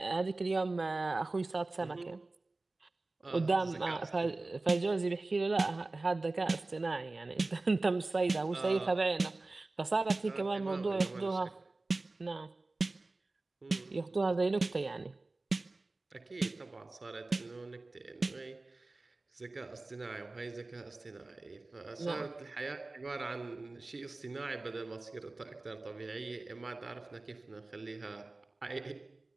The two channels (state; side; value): quieter; left; 3.2 dB